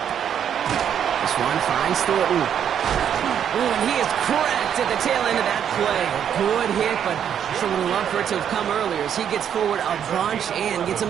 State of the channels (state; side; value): quieter; left; 8.9 dB